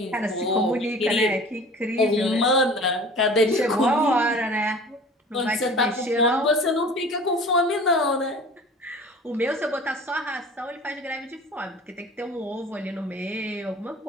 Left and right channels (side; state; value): both; normal; correlation 0.42